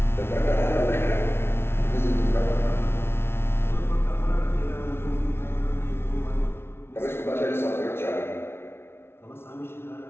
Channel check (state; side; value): late; right; 0.12 ms